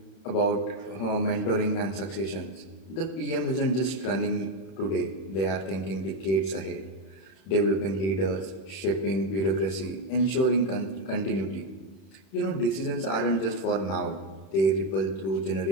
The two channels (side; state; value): right; late; 31 ms